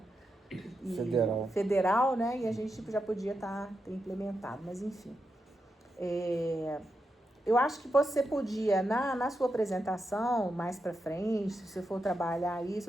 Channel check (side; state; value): both; normal; correlation 0.86